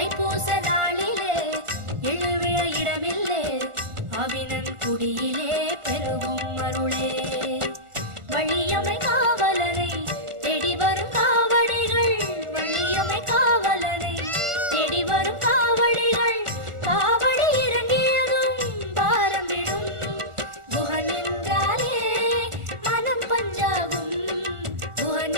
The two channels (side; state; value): left; late; 1.4 ms